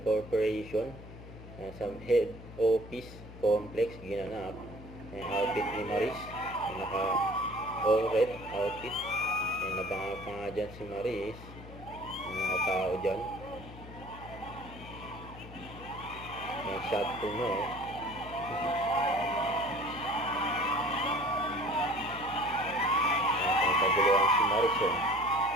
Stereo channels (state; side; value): noise; left; hum, 15 dB below the sound